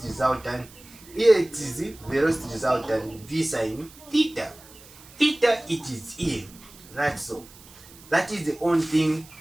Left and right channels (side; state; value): right; noise; hiss, 22 dB below the sound